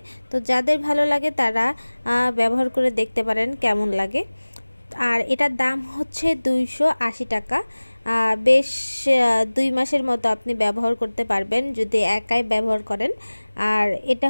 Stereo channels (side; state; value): both; inverted; correlation -1.00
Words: তো যাদের ভালো লাগে তারা ব্যবহার করে দেখতে পারেন কেমন লাগে। আর এটার দাম হচ্ছে 280 টাকা। বেশ 2 মাসের মতো আপনি ব্যবহার করতে পারবেন যদি একাই ব্যবহার করেন। আর এটা